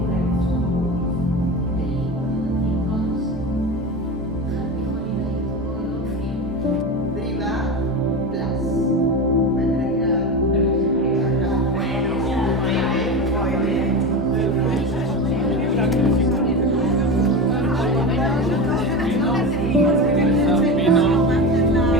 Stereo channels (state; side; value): normal; both; correlation 0.23